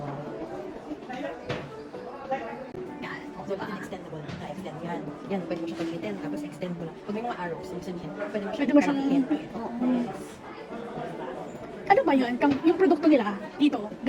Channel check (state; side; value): identical; both; correlation 1.00